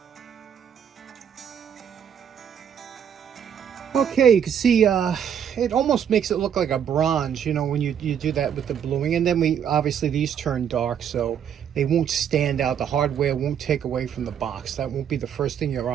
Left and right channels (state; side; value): quieter; left; 8.6 dB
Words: Okay, you can see it almost makes it look like a bronze, you know, when you do that with the bluing. And then obviously these turn dark, so they won't stand out. The hardware won't take away from the box. That won't be the first thing your